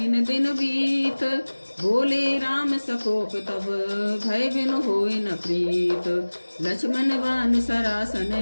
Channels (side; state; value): both; inverted; correlation -1.00